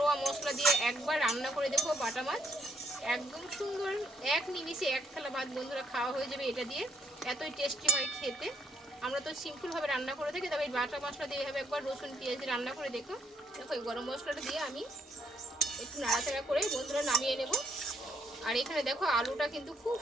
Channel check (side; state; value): both; normal; correlation 0.73